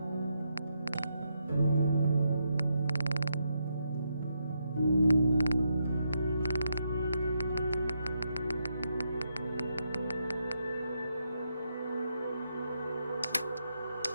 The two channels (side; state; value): both; inverted; correlation -0.81